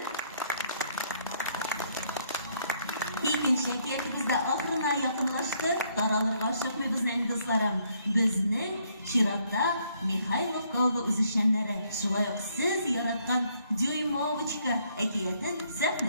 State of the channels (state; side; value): inverted; both; correlation -0.69